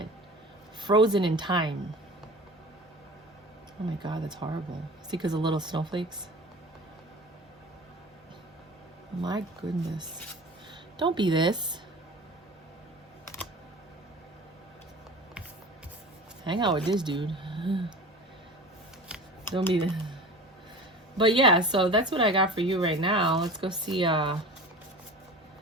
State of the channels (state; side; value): normal; both; correlation 0.37